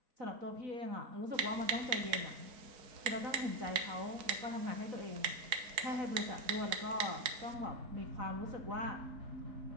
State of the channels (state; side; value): late; left; 4.5 ms